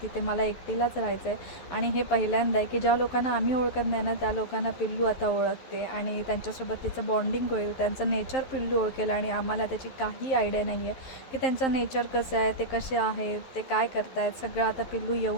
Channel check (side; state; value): right; late; 11 ms